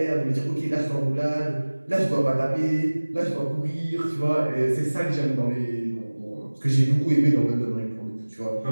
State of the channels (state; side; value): inverted; both; correlation -1.00